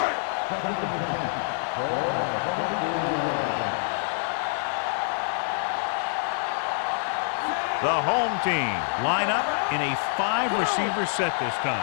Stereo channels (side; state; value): right; silent; 61 dB below the other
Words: Second and 10. Ball on the 24-yard line. The home team line up in a 5-receiver set this